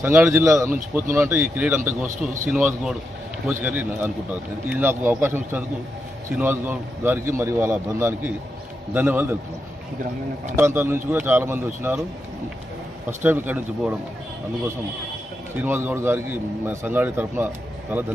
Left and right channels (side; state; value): both; normal; correlation 0.85